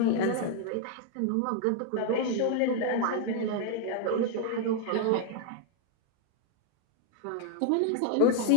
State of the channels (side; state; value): both; different; correlation 0.00